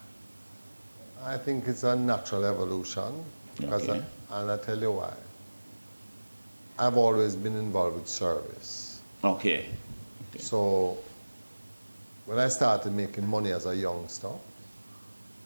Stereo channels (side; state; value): both; inverted; correlation -1.00